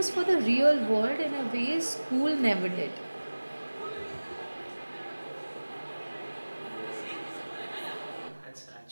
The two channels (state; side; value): inverted; both; correlation -1.00